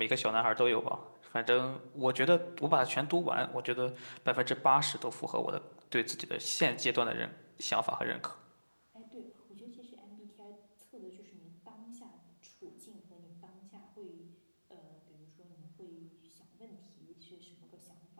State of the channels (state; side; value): inverted; both; correlation -1.00